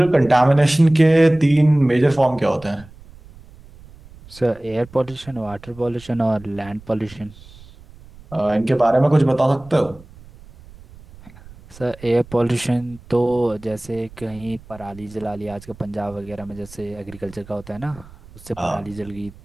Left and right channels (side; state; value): right; noise; rumble, 21 dB below the sound